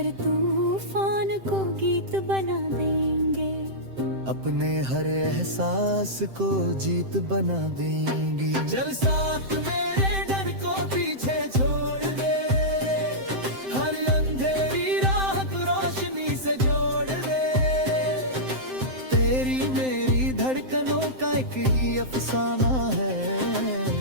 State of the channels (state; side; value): late; left; 7.7 ms